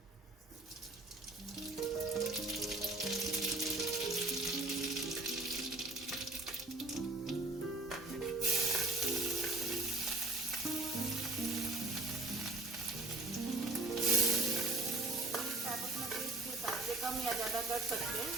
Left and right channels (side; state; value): left; quieter; 3.1 dB